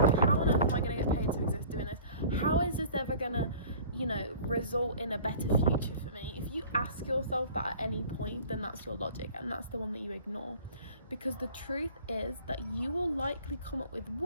think, how on earth am I going to get paid to exist doing this? How is this ever going to, result in a better future for me? If you ask yourself that at any point, then that's your logic, and that's the one that you ignore. Because the truth is that you will likely come up with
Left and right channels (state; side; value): inverted; both; correlation -0.46